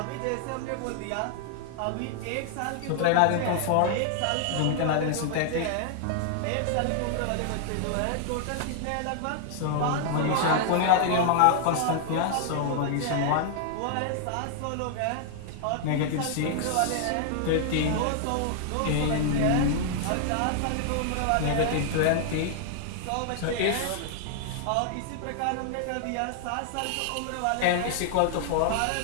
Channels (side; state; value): both; different; correlation 0.00